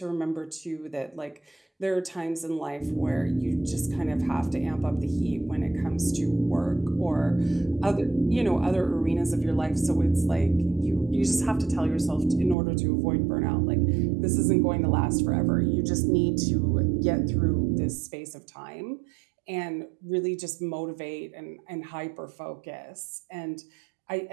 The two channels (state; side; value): drops out; left; at 12.6 s